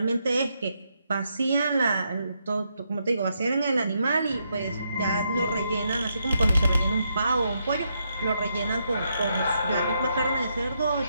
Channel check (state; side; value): inverted; both; correlation -0.79